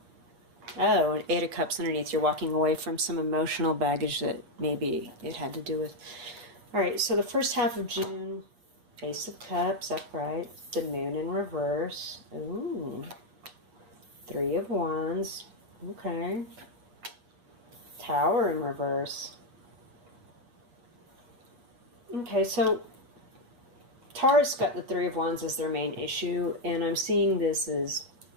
Oh, and 8 of Cups underneath. You're walking away from some emotional baggage that maybe it had to do with. All right, so the first half of June, Ace of Cups upright, the Moon in reverse. Ooh, 3 of Wands. Okay. Tower in reverse. Okay, so Taurus got the 3 of Wands as their main issue, and I'm seeing this as,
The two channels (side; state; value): left; late; 8.3 ms